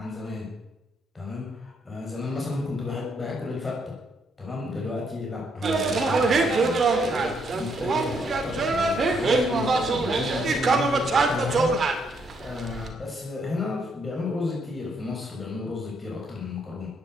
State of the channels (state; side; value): normal; both; correlation 0.73